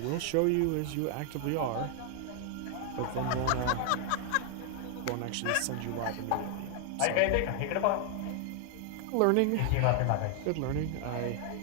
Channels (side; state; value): both; different; correlation 0.00